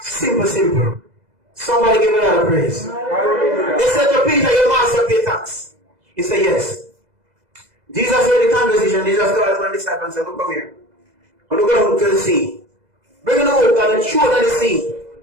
Somebody give a lot of praise. They said to Peter, your master pay tax. He said, yes. Jesus heard the conversation. Jesus told his disciples and said, look, come here. And look down to the sea. Bring the hook and throw it in the sea.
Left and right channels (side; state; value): left; late; 2.0 ms